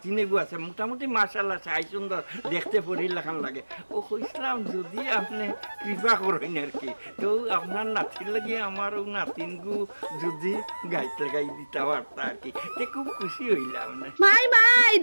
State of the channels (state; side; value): inverted; both; correlation -1.00